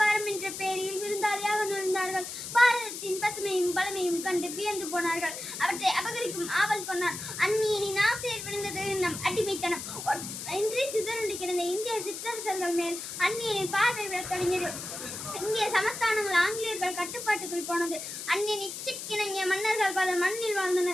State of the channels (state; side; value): noise; left; hiss, 8 dB below the sound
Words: என்ற பெயரில் விருந்தாளியாக நுழைந்தார்கள். பாரதத்தின் பசுமையும் பலமையும் கண்டு வியந்து போனார்கள். அவற்றை அபகரிக்கும் ஆவல் கொண்டார். அந்நியனின் ஆசையில் விழுந்தது நம் அடிமைத்தனம். இன்றி சிதறுண்டு கிடந்த இந்திய சிற்றரசர்கள் மேல் அந்நியனின் பார்வை விடத் தொடங்கியது. இந்திய சமஸ்தானங்கள் ஆங்கிலேயர்கள் கட்டுப்பாட்டுக்குள் போனது. அந்நியன் இச்சைக்கிணங்கிய மன்னர்கள் பல மண்ணில்